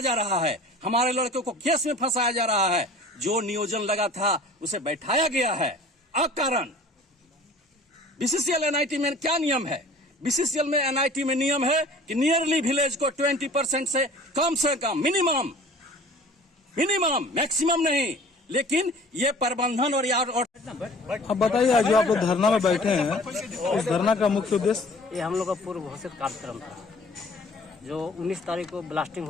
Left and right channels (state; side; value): normal; both; correlation 0.47